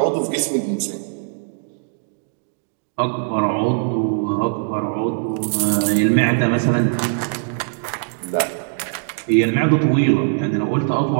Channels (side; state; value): left; silent; digital silence